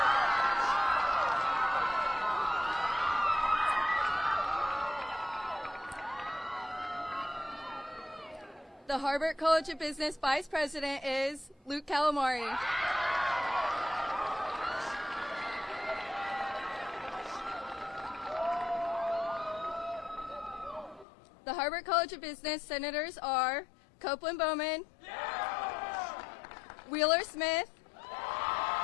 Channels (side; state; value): right; drops out; at 21.1 s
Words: The Harvard College of Business Vice President is Luke Calamari. The Harvard College of Business senators are Copeland Bowman, Wheeler Smith,